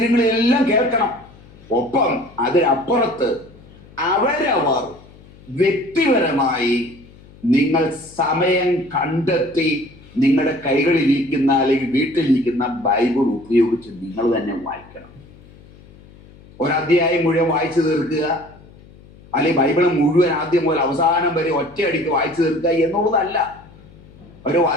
കേൾക്കണം. ഒപ്പം അതിനപ്പുറത്ത് അവരവർ വ്യക്തിപരമായി നിങ്ങൾ സമയം കണ്ടെത്തി നിങ്ങളുടെ കൈകളിലിരിക്കുന്ന അല്ലെങ്കിൽ വീട്ടിലിരിക്കുന്ന ബൈബിൾ ഉപയോഗിച്ച് നിങ്ങൾ തന്നെ വായിക്കണം. ഒരധ്യായം മുഴുവൻ വായിച്ചു തീർക്കുക, അല്ലെങ്കിൽ ബൈബിൾ മുഴുവൻ ആദ്യം മുതൽ അവസാനം വരെ ഒറ്റയടിക്ക് വായിച്ചു തീർക്കുക എന്നുള്ളതല്ല. ഒരു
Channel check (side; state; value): left; noise; hum, 23 dB below the sound